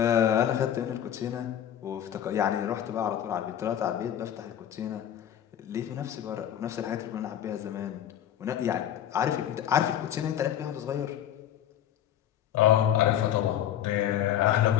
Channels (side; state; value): right; quieter; 10.7 dB